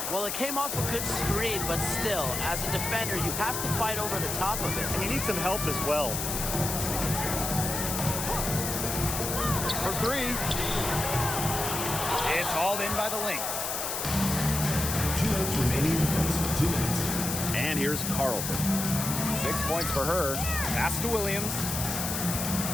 Well, it came off a good screen, but still, as a defender, you have to fight over the top of it. And you need some help as well. For 3. It's hauled in by the Lynx. 2 minutes remaining in the first. 2 minutes. And here's Carlton. 6 points for her. Pass to Williams.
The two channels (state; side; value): noise; left; hiss, 3 dB below the sound